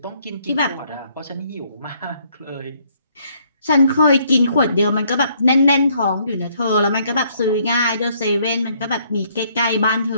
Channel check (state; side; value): inverted; both; correlation -0.67